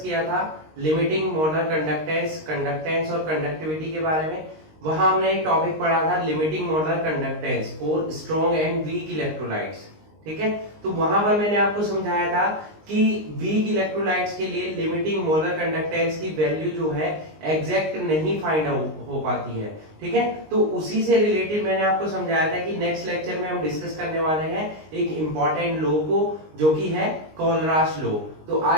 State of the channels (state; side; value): late; left; 19 ms